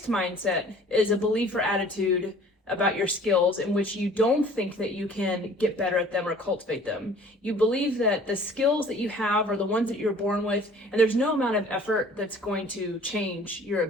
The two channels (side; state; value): both; normal; correlation 0.50